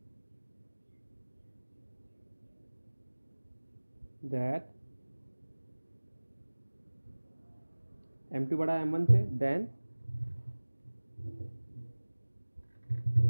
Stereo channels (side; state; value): both; inverted; correlation -1.00